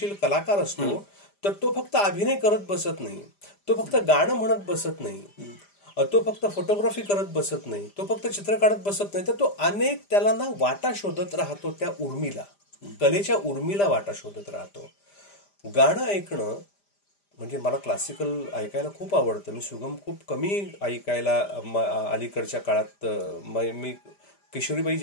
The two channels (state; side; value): late; right; 5.0 ms